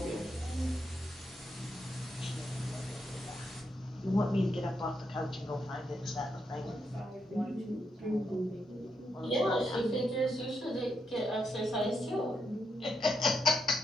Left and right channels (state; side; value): normal; both; correlation 0.81